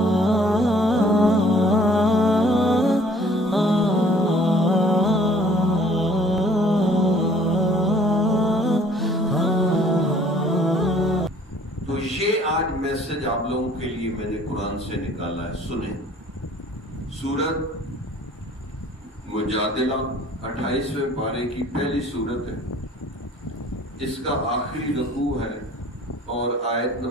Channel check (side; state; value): both; normal; correlation 0.55